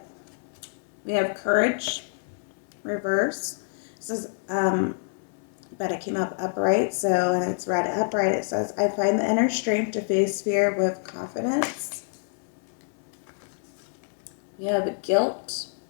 We have courage, reverse. It says, but it came up upright, so, and it's read upright. It says, I find the inner strength to face fear with confidence. We have guilt.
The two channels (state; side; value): silent; right; digital silence